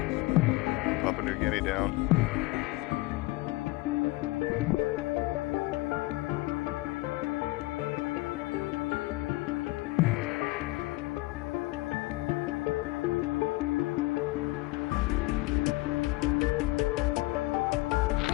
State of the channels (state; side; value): quieter; right; 20.8 dB